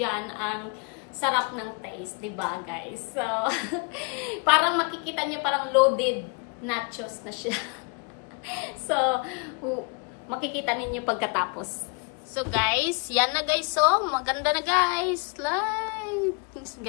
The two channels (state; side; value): quieter; right; 33.4 dB